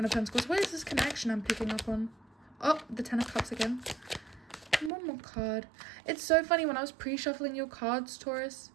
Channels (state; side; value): drops out; left; at 4.9 s